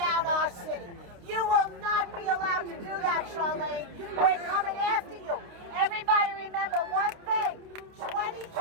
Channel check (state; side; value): late; left; 29 ms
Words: our city. You will not be allowed to do that, Charlene. We're coming after you. Everybody remember one thing.